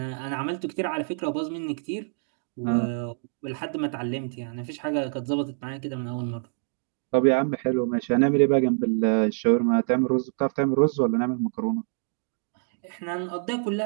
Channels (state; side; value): silent; left; digital silence